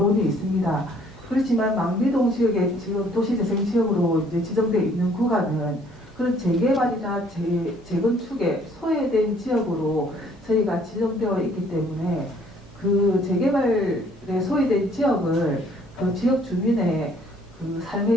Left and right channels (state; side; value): normal; both; correlation 0.60